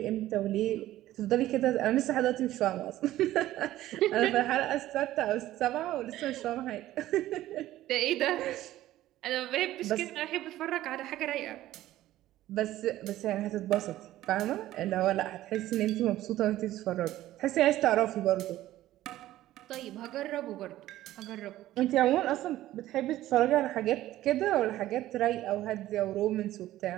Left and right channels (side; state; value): left; quieter; 14.6 dB